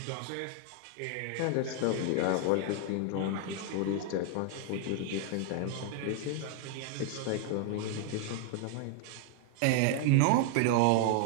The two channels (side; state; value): both; different; correlation 0.00